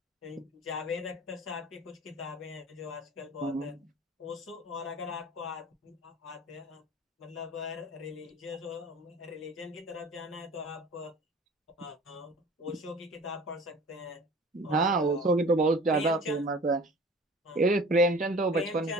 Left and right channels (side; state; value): both; normal; correlation 0.44